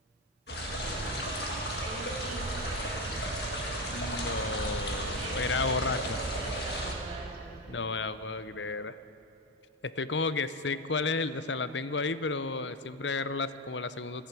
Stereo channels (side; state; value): both; normal; correlation 0.14